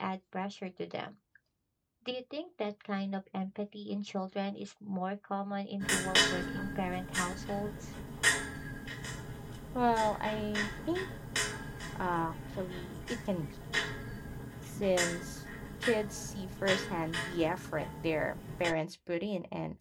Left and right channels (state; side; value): identical; both; correlation 1.00